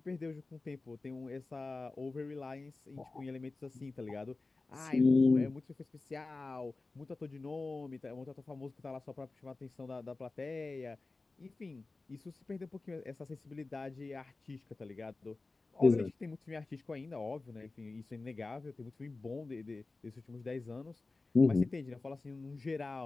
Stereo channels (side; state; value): right; quieter; 3.5 dB